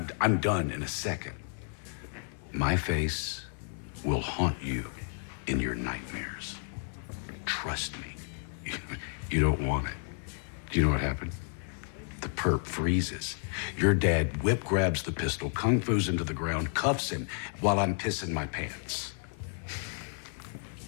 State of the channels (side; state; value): right; silent; 57 dB below the other